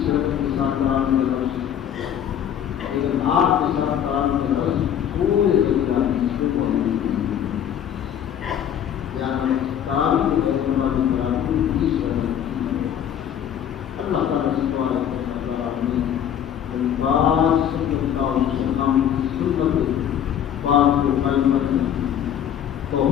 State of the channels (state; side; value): quieter; right; 9.6 dB